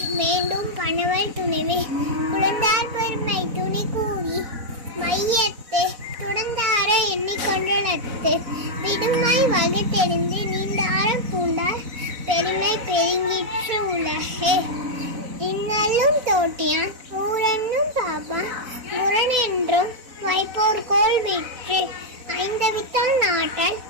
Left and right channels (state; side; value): late; left; 4.0 ms